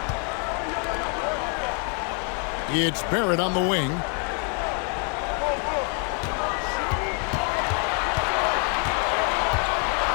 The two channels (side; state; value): right; quieter; 39.3 dB